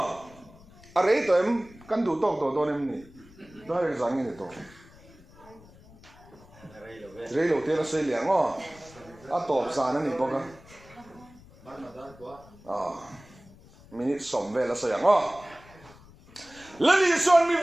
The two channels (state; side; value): noise; left; rumble, 23 dB below the sound